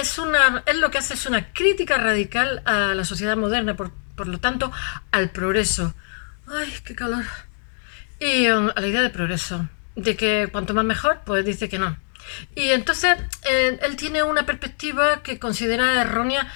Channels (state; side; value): silent; right; 56 dB below the other